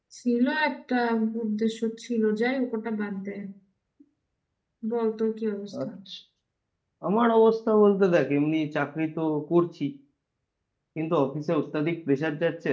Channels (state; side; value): identical; both; correlation 1.00